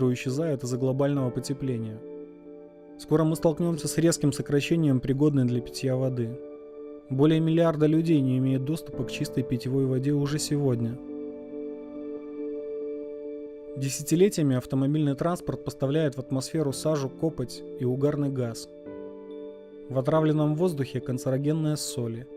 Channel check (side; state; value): both; identical; correlation 1.00